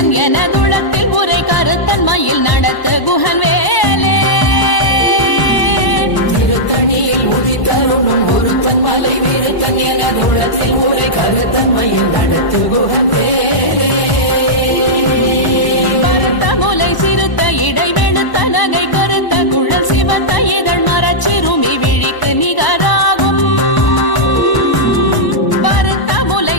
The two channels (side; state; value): right; late; 1.0 ms